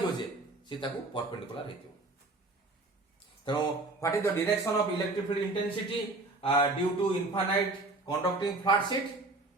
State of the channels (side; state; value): left; quieter; 3.0 dB